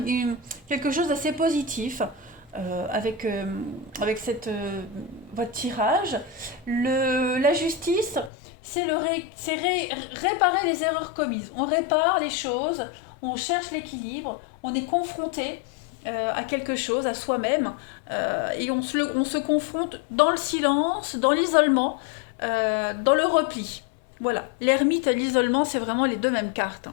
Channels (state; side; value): drops out; right; at 8.3 s